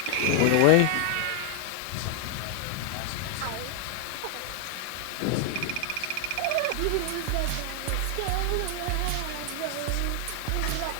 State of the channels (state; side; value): different; both; correlation 0.00